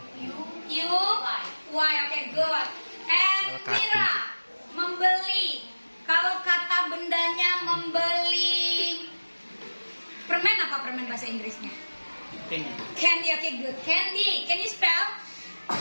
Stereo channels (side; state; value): both; inverted; correlation -1.00